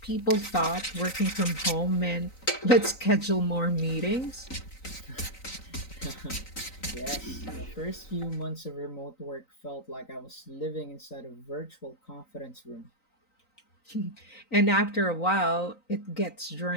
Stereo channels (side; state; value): right; late; 3.9 ms